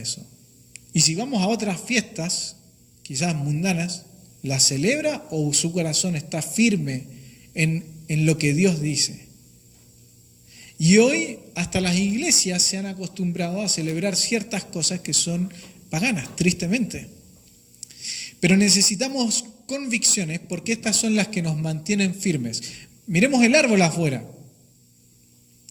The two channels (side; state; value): both; identical; correlation 1.00